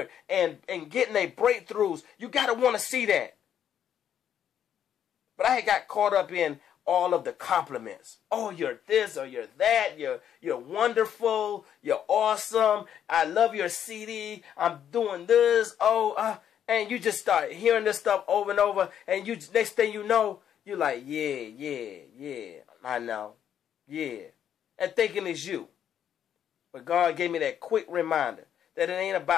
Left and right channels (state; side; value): quieter; right; 9.4 dB